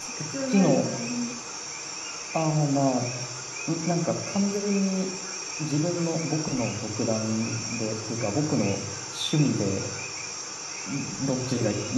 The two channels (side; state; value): both; identical; correlation 1.00